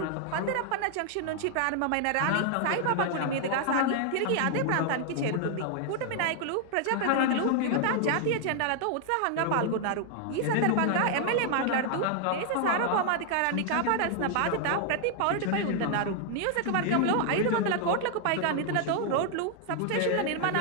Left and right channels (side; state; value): both; different; correlation 0.00